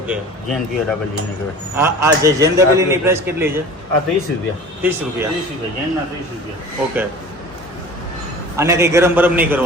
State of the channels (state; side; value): normal; both; correlation 0.40